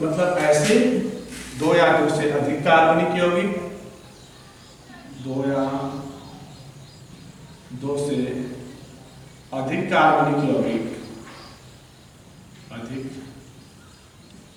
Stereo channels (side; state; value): both; identical; correlation 1.00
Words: ऐसे दो या दो से अधिक कार्बनिक यौगिक, दो या दो से अधिक कार्बनिक यौगिक,